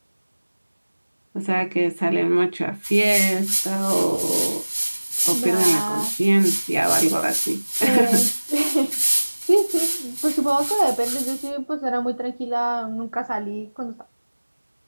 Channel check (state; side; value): inverted; both; correlation -1.00